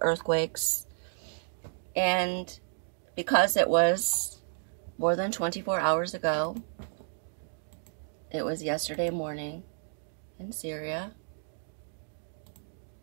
earthquakes, and because it was more than 24 hours ago, it was yesterday morning in Syria.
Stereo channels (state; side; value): silent; left; digital silence